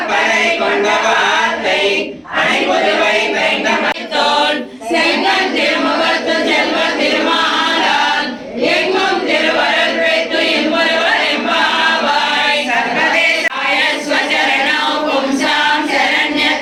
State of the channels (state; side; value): identical; both; correlation 1.00